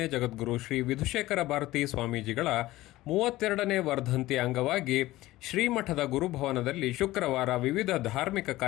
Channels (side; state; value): right; quieter; 17.2 dB